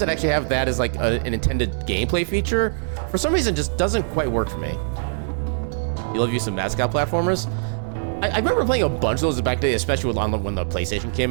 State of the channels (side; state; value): left; silent; digital silence